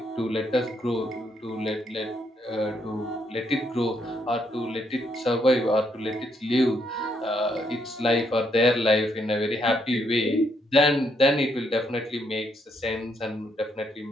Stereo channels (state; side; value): normal; both; correlation 0.74